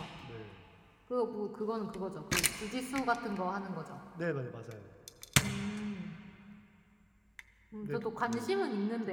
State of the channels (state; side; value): identical; both; correlation 1.00